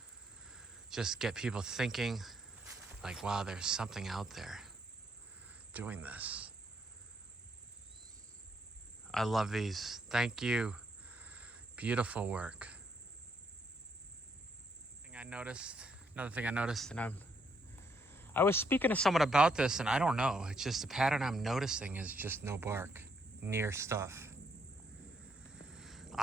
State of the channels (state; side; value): normal; both; correlation 0.74